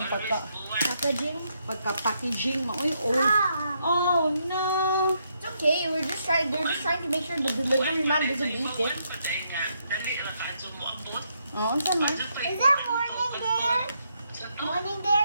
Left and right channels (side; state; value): both; inverted; correlation -0.77